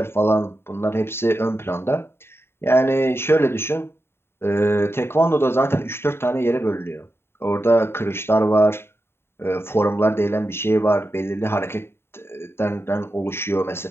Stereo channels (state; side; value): late; right; 0.11 ms